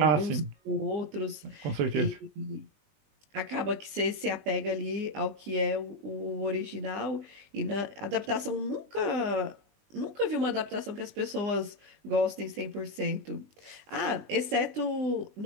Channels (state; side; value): late; left; 20 ms